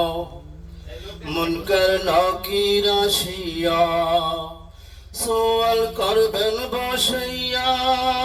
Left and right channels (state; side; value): identical; both; correlation 1.00